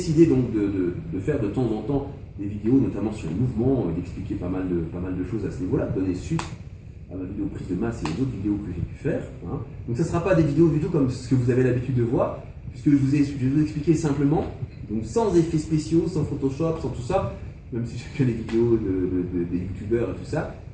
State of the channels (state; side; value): identical; both; correlation 1.00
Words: donc de faire de temps en temps des vidéos, notamment sur le mouvement, d'expliquer pas mal de choses à ce niveau-là, de donner suite à ma vidéo prise de masse et aux autres vidéos que j'ai pu faire. Hein. Donc ça ne sera pas des vidéos du tout comme ce que vous avez l'habitude de voir, puisque je vais vous expliquer simplement, donc sans effets spéciaux, sans Photoshop, sans tout ça, même si j'ai fait les vidéos des youtubeurs et tout ça,